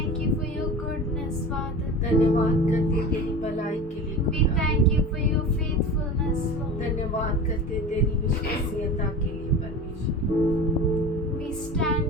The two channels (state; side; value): normal; both; correlation 0.32